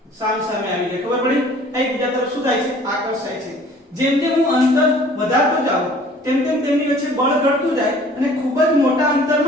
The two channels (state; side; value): normal; both; correlation 0.52